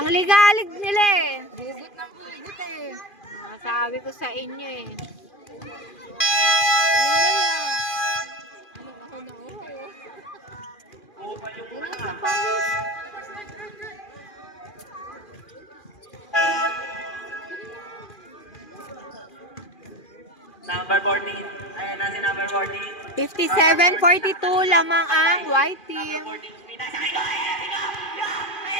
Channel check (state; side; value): late; right; 2.4 ms